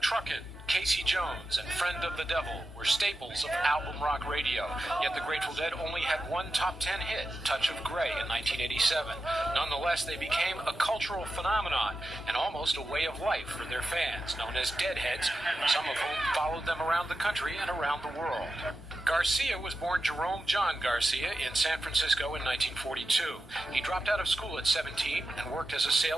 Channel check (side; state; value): both; normal; correlation 0.91